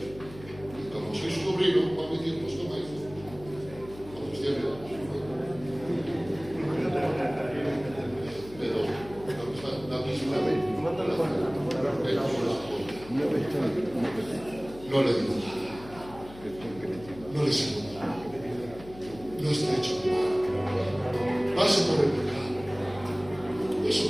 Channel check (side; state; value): left; noise; hum, 17 dB below the sound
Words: Y como soy su sobrino, va a mi tío, pues toma, hijo. Con sus 10 años. Pero la misma no le digo nada. No le sigo nada. No estrecho mi mano. Paso por el pecado. Eso,